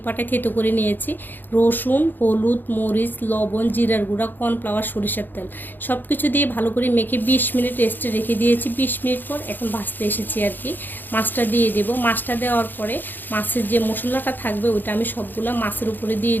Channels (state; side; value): late; right; 0.090 ms